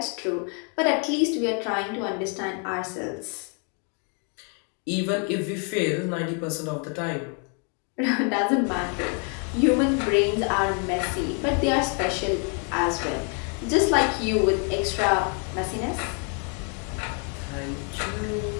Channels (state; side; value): quieter; right; 39.2 dB